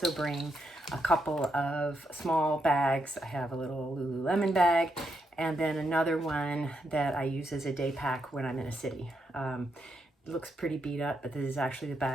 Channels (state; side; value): normal; both; correlation 0.81